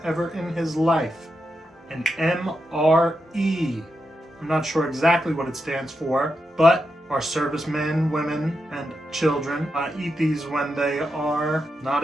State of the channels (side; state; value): both; normal; correlation 0.87